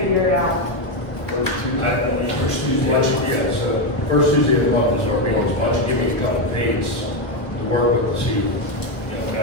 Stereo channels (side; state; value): right; late; 1.2 ms